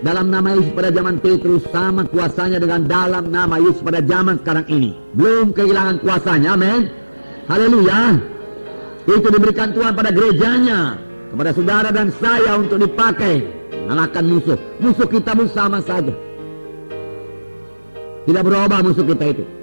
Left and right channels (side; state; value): both; inverted; correlation -1.00